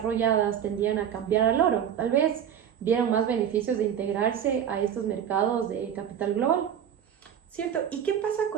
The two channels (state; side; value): quieter; left; 8.9 dB